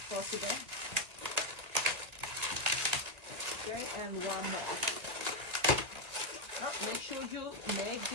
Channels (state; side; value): late; left; 1.9 ms